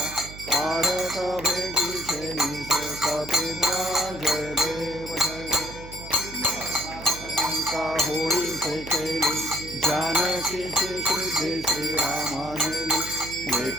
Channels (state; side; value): noise; right; hum, 14 dB below the sound